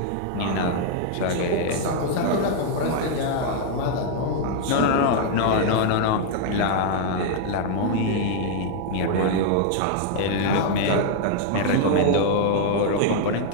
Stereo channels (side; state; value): both; different; correlation 0.00